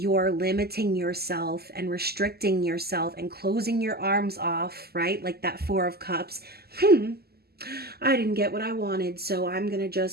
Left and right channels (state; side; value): late; left; 0.46 ms